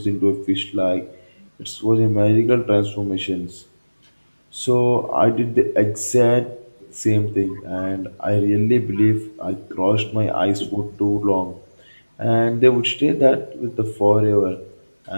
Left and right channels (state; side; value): inverted; both; correlation -1.00